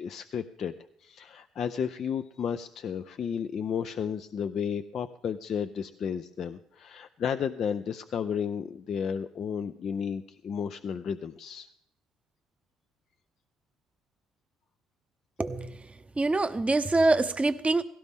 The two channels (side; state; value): both; normal; correlation 0.80